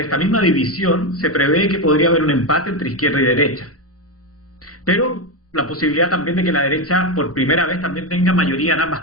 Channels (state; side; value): normal; both; correlation 0.10